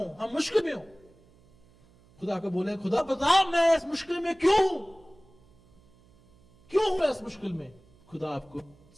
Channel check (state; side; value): noise; right; hum, 29 dB below the sound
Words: हम मुश्किल में हो, खुदा को बोले खुदा बता मैं इस मुश्किल में क्यों हूं इस मुश्किल में, खुदा आपको